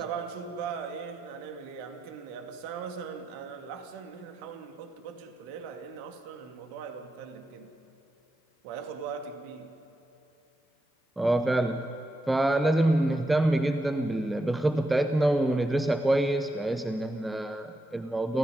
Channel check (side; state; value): both; normal; correlation 0.86